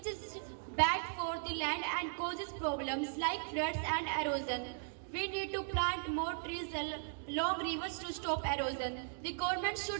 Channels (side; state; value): left; silent; digital silence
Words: is bad for the land and causes problems like floods and erosion. We need to plant more trees along rivers to stop erosion. The government